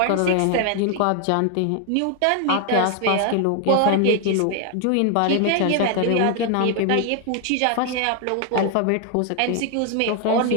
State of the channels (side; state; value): both; different; correlation 0.00